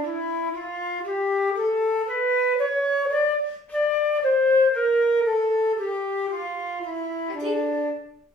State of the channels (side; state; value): both; normal; correlation 0.63